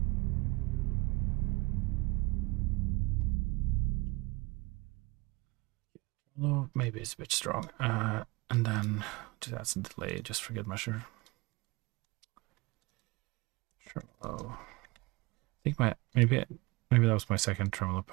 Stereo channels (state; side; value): quieter; left; 24.2 dB